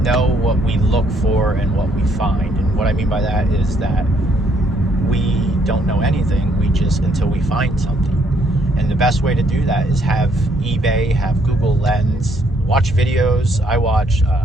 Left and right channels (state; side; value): normal; both; correlation 0.68